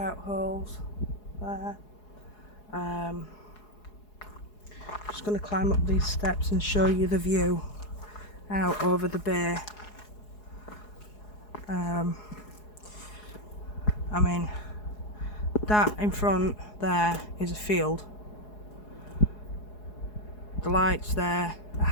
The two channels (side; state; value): right; late; 4.8 ms